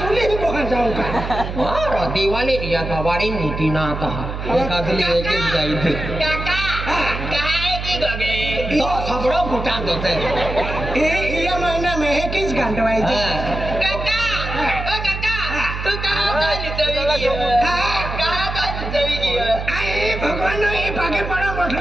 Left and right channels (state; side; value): noise; right; hum, 6 dB below the sound